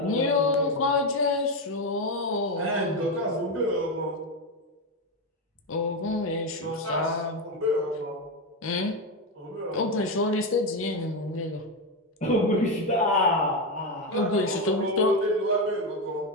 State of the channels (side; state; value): both; normal; correlation 0.10